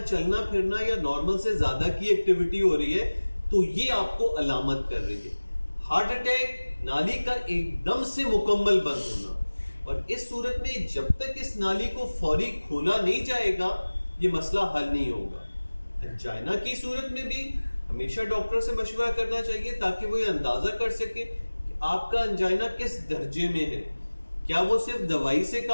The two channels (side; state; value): both; inverted; correlation -1.00